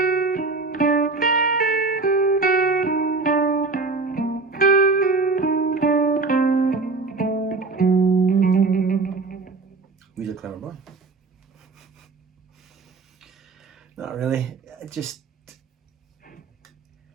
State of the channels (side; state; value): left; quieter; 3.9 dB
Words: He's a clever boy. Not really. Just,